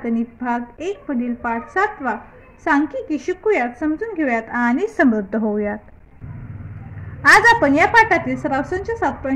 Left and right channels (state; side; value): identical; both; correlation 1.00